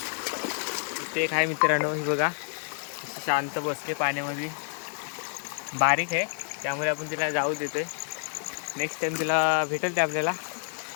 इथे एक आहे मित्रांनो, ही बघा शांत बसते पाण्यामध्ये. बारीक आहे त्यामुळे आपण तिला जाऊ देतोय. नेक्स्ट टाइम तिला भेटेल ते आपल्याला.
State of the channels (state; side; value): silent; right; digital silence